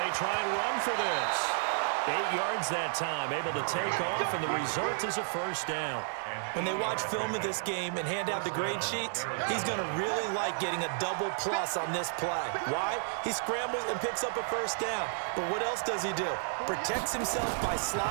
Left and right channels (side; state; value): left; silent; 57 dB below the other